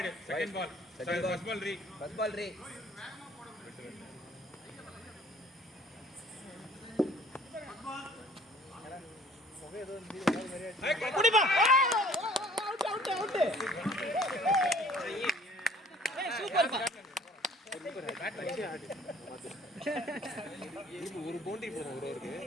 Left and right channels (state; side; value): normal; both; correlation 0.54